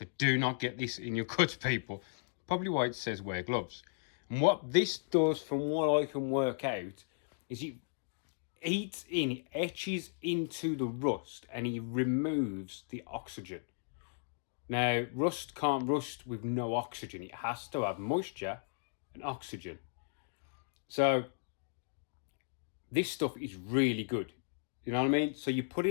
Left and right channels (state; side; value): silent; right; digital silence